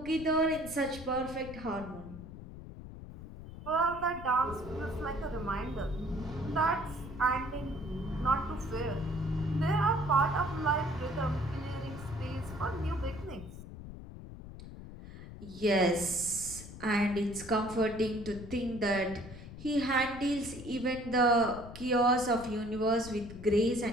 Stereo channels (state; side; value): noise; left; rumble, 13 dB below the sound